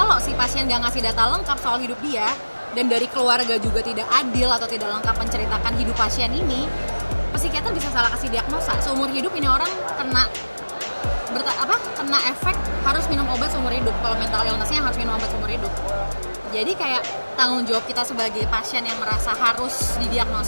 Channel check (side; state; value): both; inverted; correlation -1.00